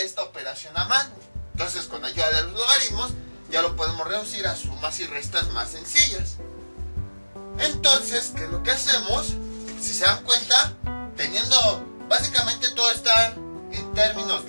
esta operación a mano. Entonces, con ayuda de los logaritmos, ya lo podemos reducir a sumas y restas más sencillas. Entonces, ¿qué es lo que hacemos? Si se dan cuenta, teniendo básicamente todo está en términos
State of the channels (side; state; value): both; inverted; correlation -1.00